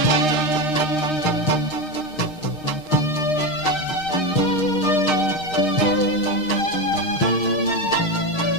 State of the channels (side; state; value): right; late; 6.5 ms